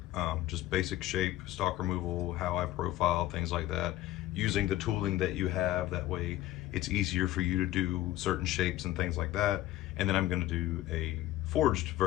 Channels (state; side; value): quieter; right; 15.1 dB